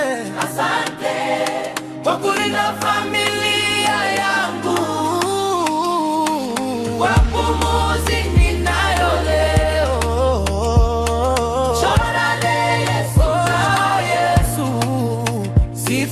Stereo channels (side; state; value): both; identical; correlation 1.00